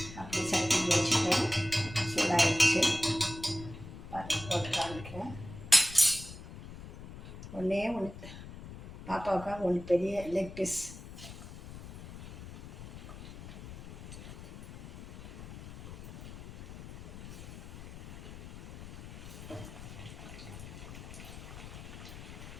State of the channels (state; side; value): noise; left; rumble, 12 dB below the sound